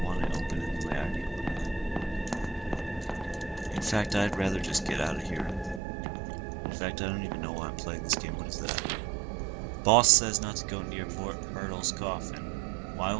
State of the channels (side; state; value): left; drops out; at 5.8 s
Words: want to open it the way I'd open it. In fact, I'd rather just get out of here. In fact, I don't even know why I'm playing this game. What is that? Boss says not to go near Myrtle's coffin. Why